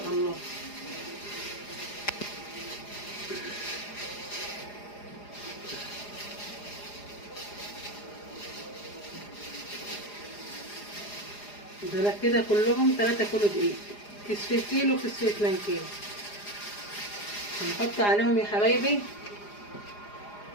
الله. دول كده كلهم 3 كيلو دقيق، كيس كيلو كيس 2 كيلو. هنحط عليهم يا حبايبي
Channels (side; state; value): right; late; 4.9 ms